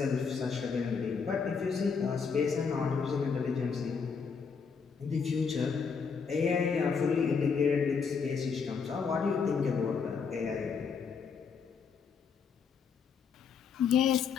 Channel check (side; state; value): right; quieter; 5.8 dB